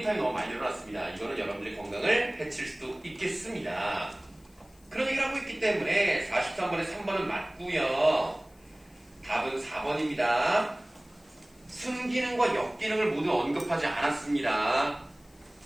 타임이 너무 많이 늘어났습니다. 이거는 여러분들의 건강을 해칠 수도 있겠습니다. 그런 얘기를 하고 있기 때문에 43번에 3번은 맞고요. 답은 4번입니다. 순기능과 역기능을 모두 언급하지 않았습니다.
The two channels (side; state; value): left; noise; hiss, 29 dB below the sound